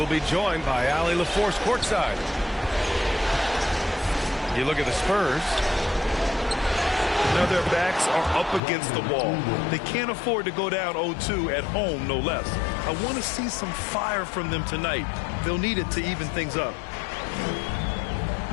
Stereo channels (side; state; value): right; drops out; at 8.6 s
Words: be joined by Allie LaForce courtside. You look at the Spurs. Now their backs are up against the wall. They can't afford to go down 0-2 at home, no less. I want to see some fire from them tonight. They'll need it to even things up.